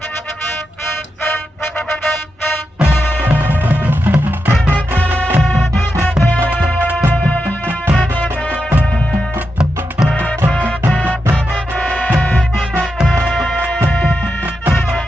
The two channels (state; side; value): normal; both; correlation 0.87